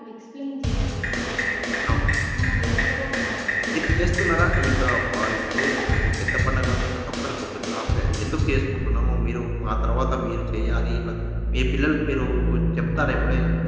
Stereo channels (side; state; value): both; identical; correlation 1.00